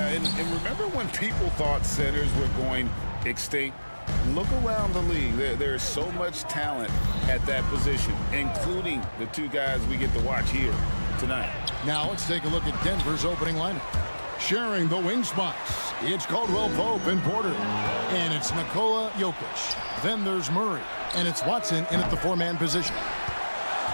and remember when people thought centers were going extinct? Look around the league. There's so much talent at that position, including the two guys we get to watch here tonight. Now let's take a look at Denver's opening lineup. Sharing the wing spots, it's Caldwell Pope and Porter. And it's Nikola Jokic. Then there's Murray. And it's Watson in at the four-man position.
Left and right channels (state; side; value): inverted; both; correlation -1.00